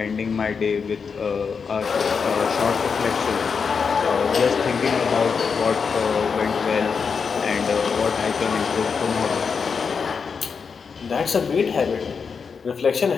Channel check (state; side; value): quieter; right; 5.7 dB